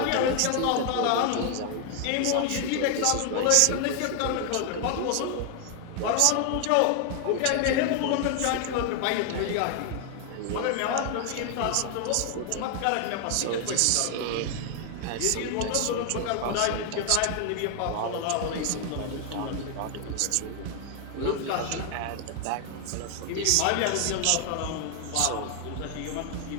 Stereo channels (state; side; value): different; both; correlation 0.00